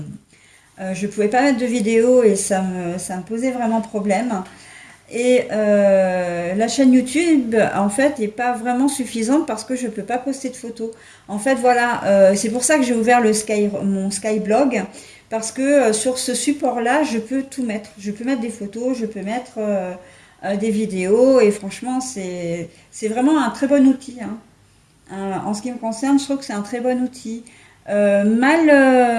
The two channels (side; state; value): both; identical; correlation 1.00